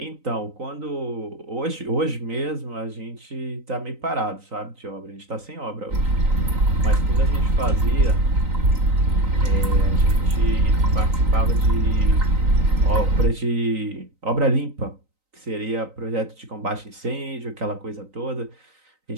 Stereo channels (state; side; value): late; left; 3.9 ms